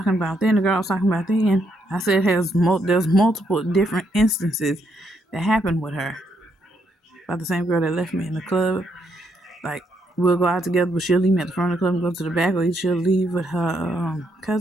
about then, the girl I was talking about then, I said there's multiple different instances that happened with her. About the same girl that left me in the club. Like, we'll go out together, but she'll leave me at the front of the club and go to the back, or she'll leave with her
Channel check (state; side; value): normal; both; correlation 0.76